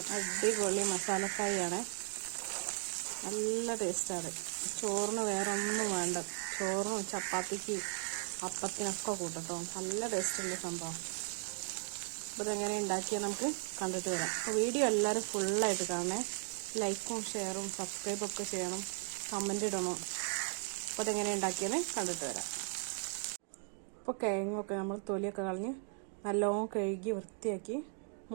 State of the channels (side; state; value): left; silent; 53 dB below the other